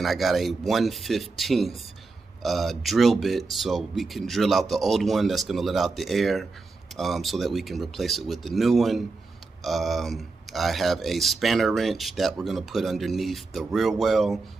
I got a 1/15 drill bit so we can drill out the old one that's gonna let out the air so that we can replace it with the new one. I have a spanner wrench that we're gonna put underneath the rear well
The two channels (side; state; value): left; quieter; 3.8 dB